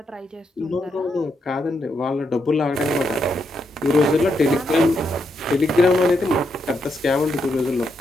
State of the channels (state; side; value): normal; both; correlation 0.80